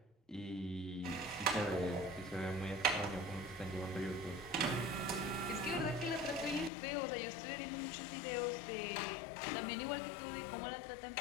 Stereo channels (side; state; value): right; drops out; at 6.7 s